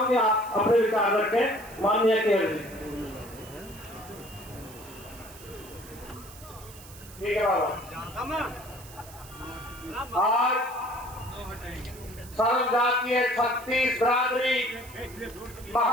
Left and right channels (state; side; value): noise; right; hiss, 18 dB below the sound